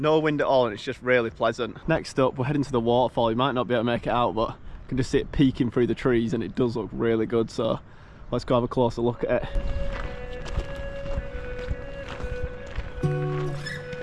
wind at all and it's just really pleasant. Next up we're heading to the waterfall. You might not be able to make it out, but you can just see it peeking through the trees and it does look really good, so let's go have a closer look at it.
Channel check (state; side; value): identical; both; correlation 1.00